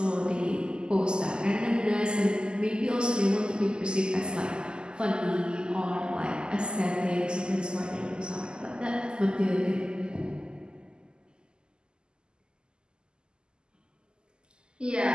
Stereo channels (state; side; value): late; left; 0.047 ms